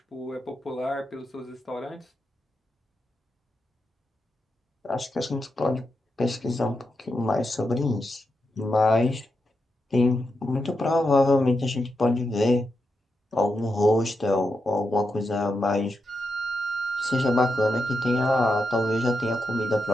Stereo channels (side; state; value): both; normal; correlation 0.86